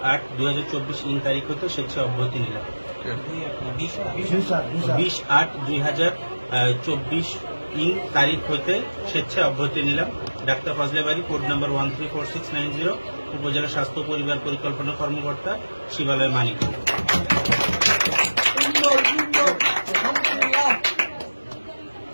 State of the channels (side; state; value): both; inverted; correlation -1.00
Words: তারিখ হতে স্বেচ্ছায় অব্যাহতি নিলাম। 20/8/2024 তারিখ হতে স্বেচ্ছায় অব্যাহতি নিলাম। ডাক্তার ফজলে বারী, কোড নাম্বার 134690, উপজেলা স্বাস্থ্য পরিবার পরিকল্পনা কর্মকর্তা, শিবালয়, মানিকগঞ্জ।